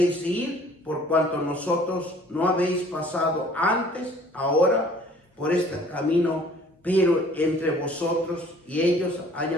de ir, por cuanto nosotros no habéis pasado antes, ahora por este camino, pero entre vosotros y ellos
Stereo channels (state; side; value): normal; both; correlation 0.53